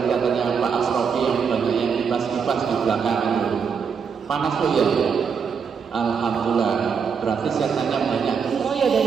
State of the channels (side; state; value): left; quieter; 6.3 dB